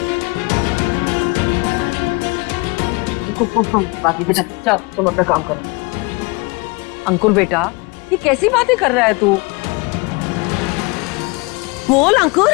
बाकी बेटा, चल तुम अपना काम करो। अंकुर बेटा, ये कैसी बातें कर रहा है तू? बोल अंकुर।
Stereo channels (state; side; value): quieter; right; 27.3 dB